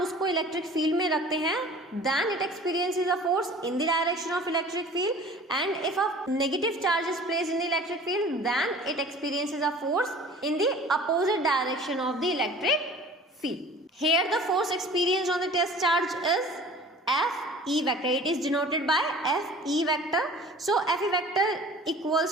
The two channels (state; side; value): normal; both; correlation 0.45